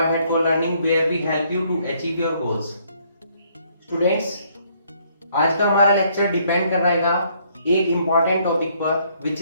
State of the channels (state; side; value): inverted; both; correlation -0.67